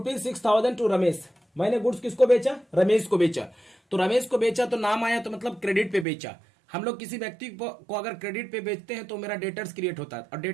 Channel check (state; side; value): drops out; left; at 6.1 s